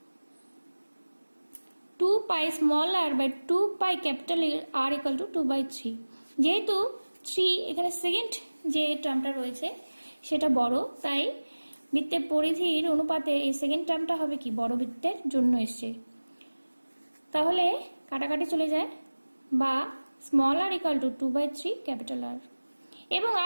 2 পাই r/2 পাই R = 2/3। যেহেতু 3 এখানে সেকেন্ড যে টার্মটা রয়েছে সেটা বড়, তাই বৃত্তের পরিধির অনুপাতে এই সেকেন্ড টার্মটা হবে কি, বড় বৃত্তের জন্য এসছে। তাহলে কাটাকাটি চলে যায়, বা r = 2/3 R। এবং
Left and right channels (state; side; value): inverted; both; correlation -1.00